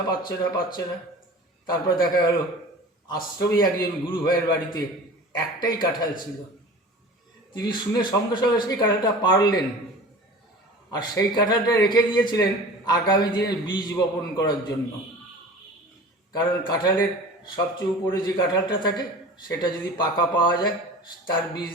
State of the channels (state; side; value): normal; both; correlation 0.39